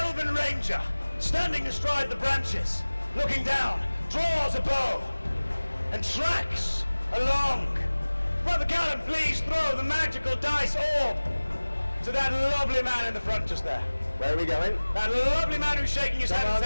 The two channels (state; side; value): inverted; both; correlation -1.00